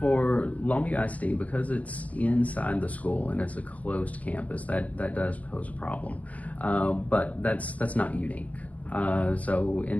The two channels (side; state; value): right; late; 0.070 ms